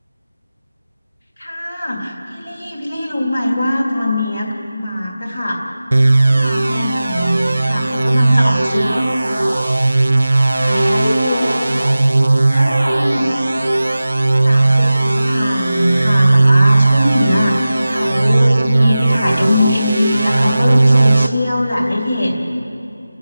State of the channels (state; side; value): inverted; both; correlation -0.96